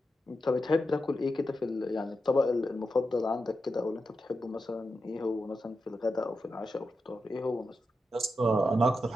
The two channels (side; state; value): both; normal; correlation 0.88